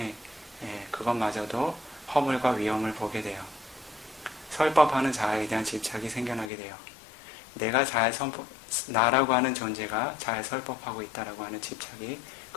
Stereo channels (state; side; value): drops out; right; at 6.5 s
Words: 그것마저도 허물과 위험을 보게 돼요. 설법하는 자아에 대한 집착이 생겨나게 돼요. 내가 나라고 하는 존재가 잘 설법하고 있다라고 하는 집착이